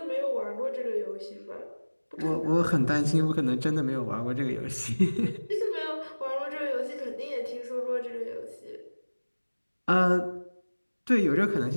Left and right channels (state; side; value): inverted; both; correlation -1.00